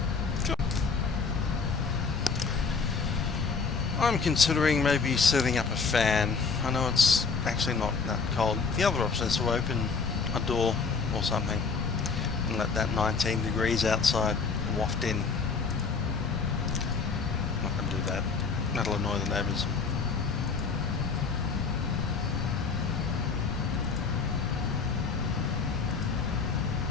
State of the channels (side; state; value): right; quieter; 4.9 dB